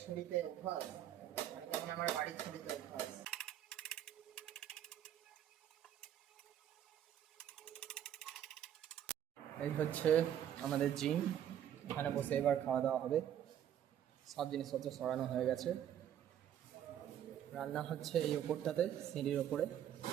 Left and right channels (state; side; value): quieter; left; 10.4 dB